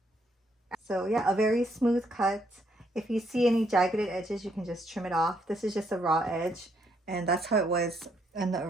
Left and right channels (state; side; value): normal; both; correlation 0.72